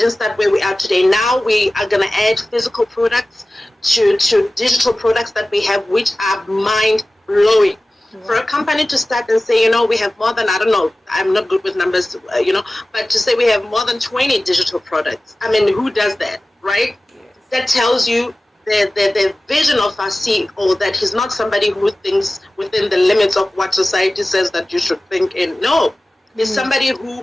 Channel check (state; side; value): normal; both; correlation 0.97